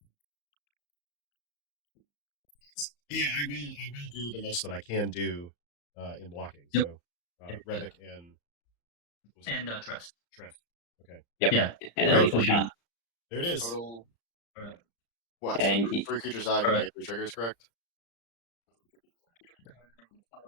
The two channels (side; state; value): right; late; 35 ms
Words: Yeah, I will do the most that I can do in blocking. So Rebbec and Tress. Okay. Yep. Yeah. And then lethal shot. There it is. Total. All right. What? And 3 creatures die. You get 3 triggers, correct?